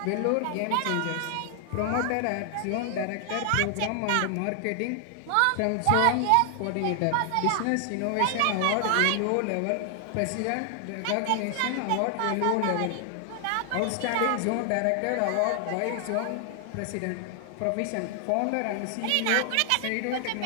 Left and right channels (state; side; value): different; both; correlation 0.00